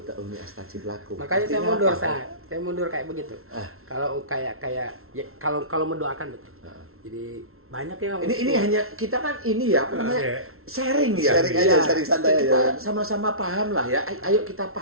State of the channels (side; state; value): left; late; 0.62 ms